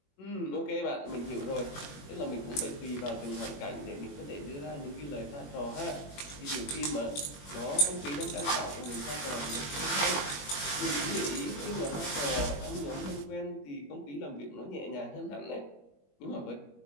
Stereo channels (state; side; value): late; right; 21 ms